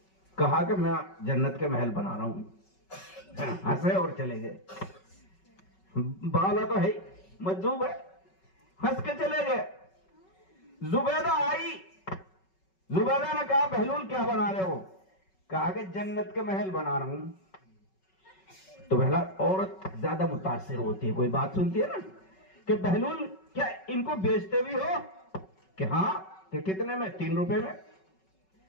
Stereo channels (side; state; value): right; late; 5.3 ms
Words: کہا کہ میں جنت کے محل بنا رہا ہوں. ہنسے اور چلے گئے. بالا تو ہے، مجذوب ہے، ہنس کے چلے گئے. زبیدہ آئی. زبیدہ نے کہا بہلول کیا بنا رہے ہو؟ کہا کہ جنت کے محل بنا رہا ہوں. تو پہلا عورت زیادہ متاثر ہوتی ہے، کوئی بات سنتی ہے نا، کہ بہلول کیا ان کو بیچتے بھی ہو؟ کہ ہاں. کہ کتنے میں؟ 3 روپے میں.